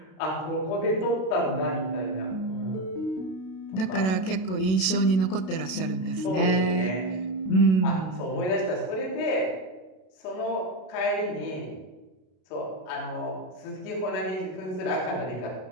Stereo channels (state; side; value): late; right; 32 ms